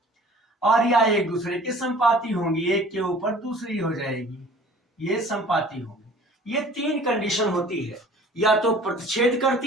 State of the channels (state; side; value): normal; both; correlation 0.49